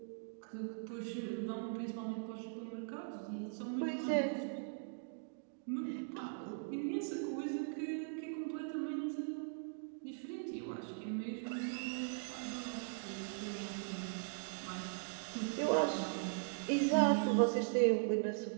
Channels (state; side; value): silent; left; digital silence